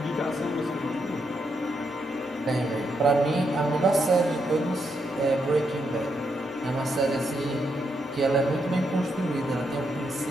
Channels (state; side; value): normal; both; correlation 0.80